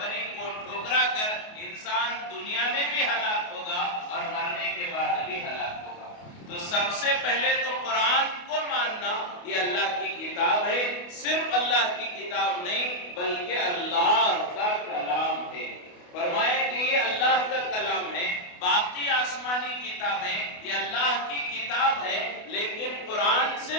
کو ٹھکرا کر انسان دنیا میں بھی ہلاک ہوگا اور مرنے کے بعد بھی ہلاک ہوگا۔ تو سب سے پہلے تو قرآن کو ماننا، یہ اللہ کی کتاب ہے، صرف اللہ کی کتاب نہیں بلکہ اللہ کا کلام ہے۔ فرمایا کہ یہ اللہ کا کلام ہے، باقی آسمانی کتابیں یہ اللہ کی کتاب ہے، لیکن قرآن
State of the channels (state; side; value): late; right; 28 ms